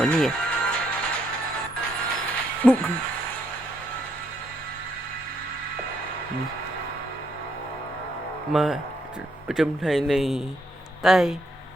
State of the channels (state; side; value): normal; both; correlation 0.74